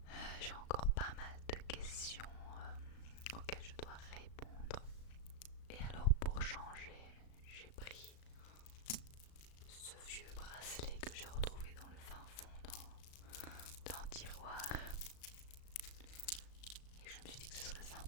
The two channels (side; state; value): right; late; 36 ms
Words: J'ai encore pas mal de questions auxquelles je dois répondre. Et alors pour changer, j'ai pris ce vieux bracelet que j'ai retrouvé dans le fin fond d'un tiroir. Et je me suis dit que ce serait